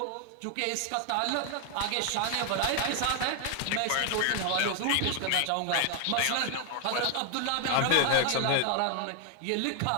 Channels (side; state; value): both; different; correlation 0.00